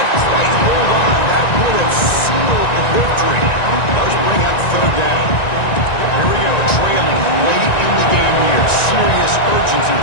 quite hold on. That would have sealed the victory. Does bring up third down. Here we go, trailing late in the game here. Serious urgency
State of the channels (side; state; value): right; late; 1.9 ms